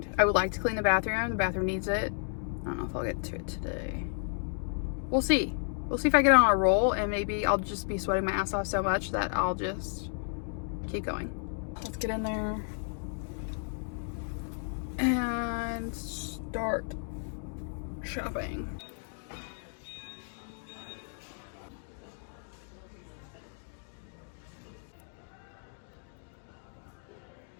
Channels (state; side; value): silent; right; 56 dB below the other